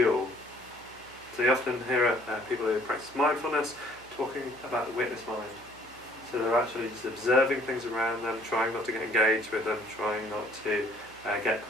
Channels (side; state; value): right; noise; hum, 25 dB below the sound